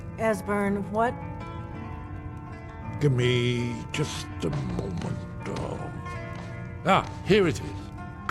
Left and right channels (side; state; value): both; identical; correlation 1.00